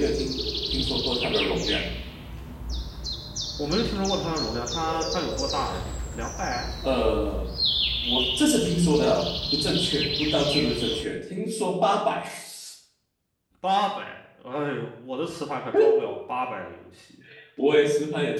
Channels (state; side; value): identical; both; correlation 1.00